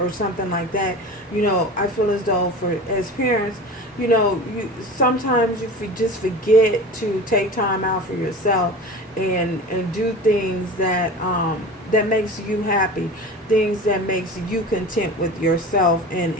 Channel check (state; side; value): normal; both; correlation 0.34